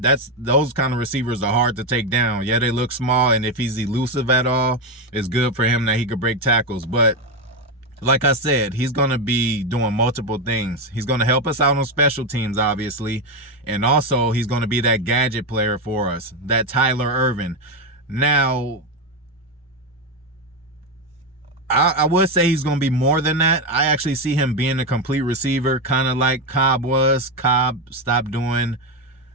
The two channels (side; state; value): both; normal; correlation 0.09